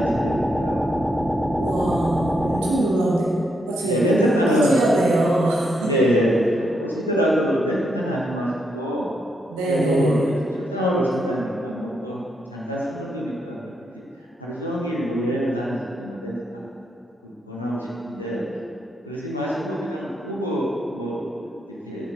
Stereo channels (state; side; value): normal; both; correlation 0.79